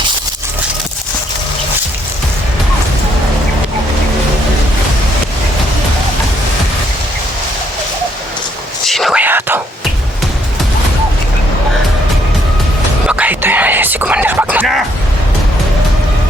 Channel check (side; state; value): both; normal; correlation 0.70